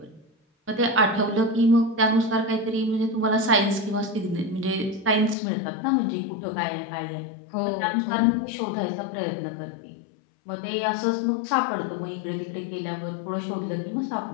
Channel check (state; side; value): drops out; right; at 5.4 s